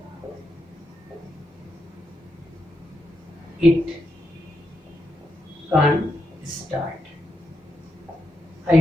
it can't start। I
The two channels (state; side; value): normal; both; correlation 0.84